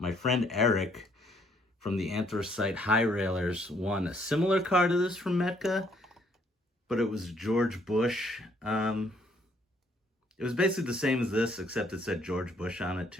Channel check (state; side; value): normal; both; correlation 0.67